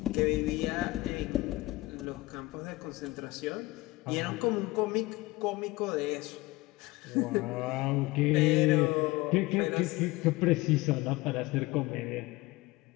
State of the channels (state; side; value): quieter; right; 20.5 dB